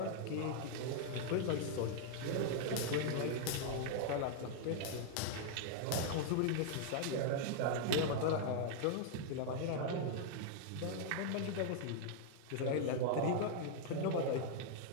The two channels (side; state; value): both; different; correlation 0.00